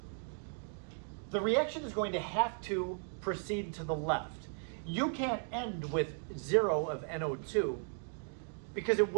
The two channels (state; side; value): silent; left; 54 dB below the other